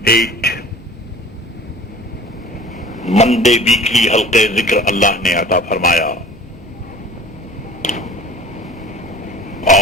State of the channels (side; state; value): both; normal; correlation 0.44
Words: منڈے ویکلی حلقے ذکر اللہ نے عطا فرمایا،